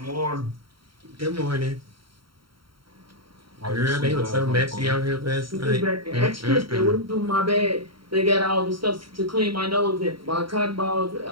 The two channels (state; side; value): late; left; 0.73 ms